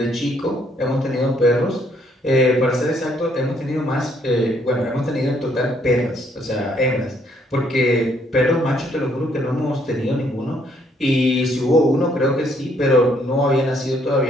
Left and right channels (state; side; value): normal; both; correlation 0.68